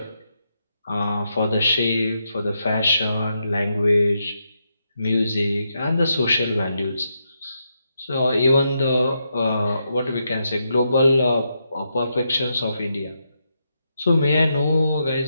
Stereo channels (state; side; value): inverted; both; correlation -0.82